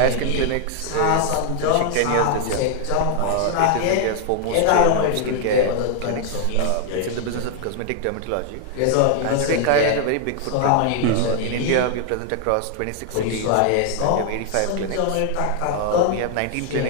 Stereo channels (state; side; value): different; both; correlation 0.00